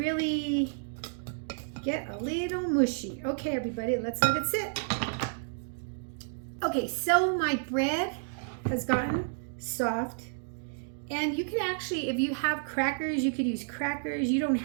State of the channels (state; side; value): silent; left; digital silence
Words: get a little mushy. Okay, everybody, let's let it sit. Okay, so my bread has gotten soft, and you can actually, if you have crackers, you could use crackers. You don't